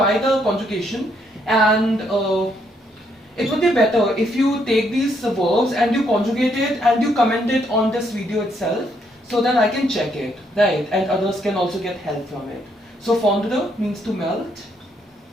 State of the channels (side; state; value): both; normal; correlation 0.73